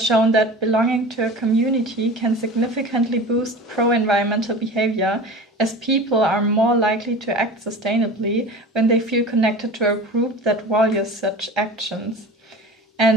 shown that belonging to a community can significantly boost pro-environmental behavior, as people are more likely to act sustainably when they feel connected to a group that values such actions.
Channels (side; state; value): both; normal; correlation 0.36